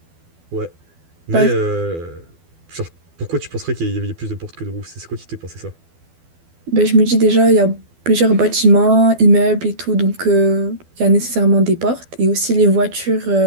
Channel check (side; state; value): left; late; 12 ms